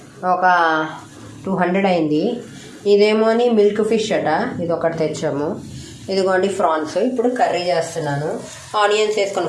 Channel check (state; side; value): identical; both; correlation 1.00